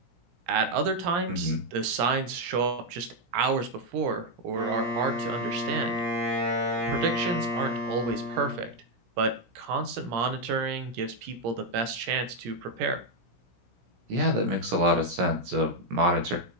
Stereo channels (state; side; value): late; left; 17 ms